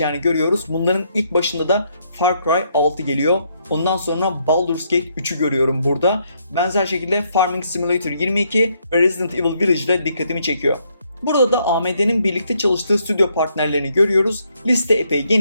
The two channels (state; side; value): inverted; both; correlation -0.73